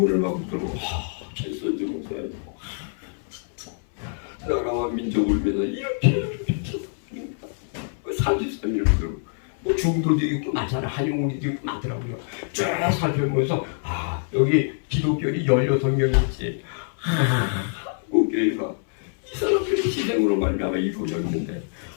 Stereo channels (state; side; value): silent; right; 62 dB below the other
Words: 막 들고 최선주 목사님 나라와 민족을 위해서 이렇게 33년을 들고 뭐 중도도 있고 많잖아. 한용운이도 있고 많더라고요. 쭉 살펴보면서 여기 기독교인이 16명이 있지. 한국교회가 이 사람들이 희생으로 말미암아 이루어졌는데